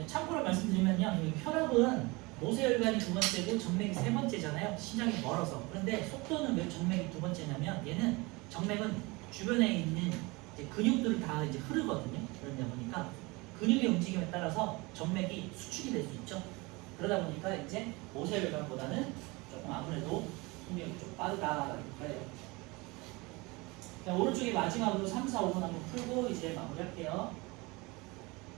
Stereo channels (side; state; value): left; quieter; 24.9 dB